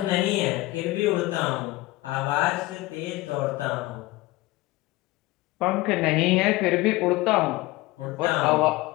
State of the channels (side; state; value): right; quieter; 19.5 dB